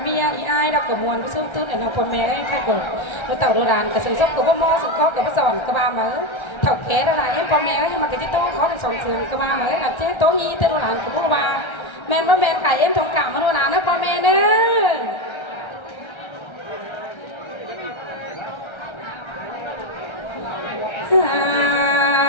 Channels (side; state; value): right; late; 1.3 ms